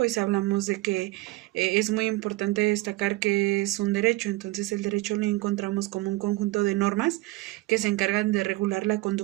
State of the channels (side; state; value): left; quieter; 20.1 dB